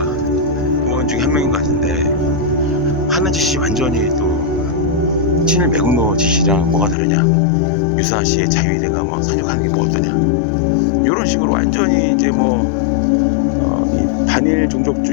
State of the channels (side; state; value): right; drops out; at 7.0 s